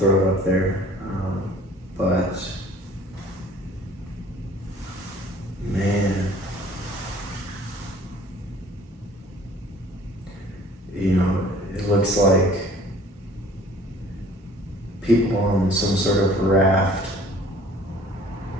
it up there. But, man, you know, it looks like people on some sort of raft.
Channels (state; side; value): normal; both; correlation 0.52